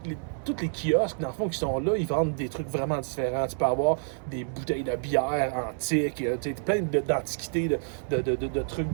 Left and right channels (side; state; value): left; silent; digital silence